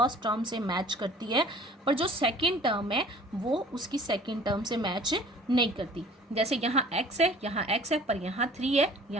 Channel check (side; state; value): both; normal; correlation 0.50